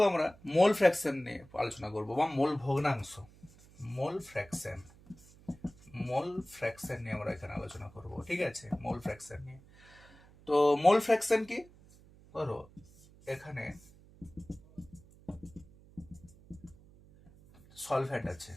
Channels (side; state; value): right; noise; hum, 24 dB below the sound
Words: আমরা মোল ফ্র্যাকশন নিয়ে আলোচনা করব, বা মোল ভগ্নাংশ। মোল ফ্র্যাকশন নিয়ে আমরা এখানে আলোচনা করব, ঠিক আছে। মোল ফ্র্যাকশন নিয়ে, তো মোল ফ্র্যাকশন কি? ধরো এখানে সলভেন্ট আছে,